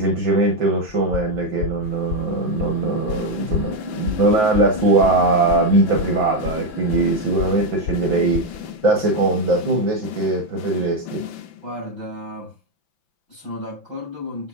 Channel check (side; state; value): right; late; 5.9 ms